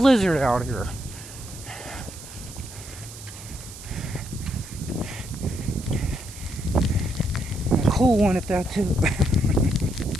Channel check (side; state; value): right; noise; hiss, 15 dB below the sound